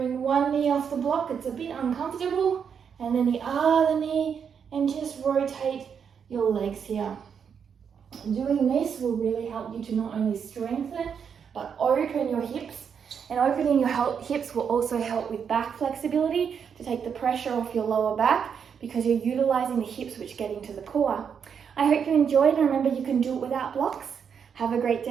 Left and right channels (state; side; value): quieter; left; 7.1 dB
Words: one knee off the block. It's a bit uncomfortable. And then the other knee, and just rotate your legs here. Doing this will really help you to not only strengthen, but open your hips. And opening your hips will also help with back flexibility to take the pressure off your lower back because you're utilizing the hips which get into the core. I hope you enjoyed, and remember you can do it without blocks. Have a great